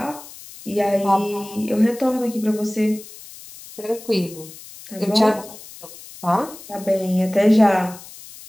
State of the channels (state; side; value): noise; left; hiss, 17 dB below the sound